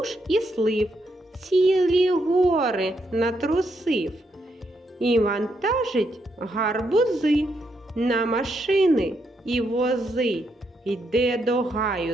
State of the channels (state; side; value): normal; both; correlation 0.78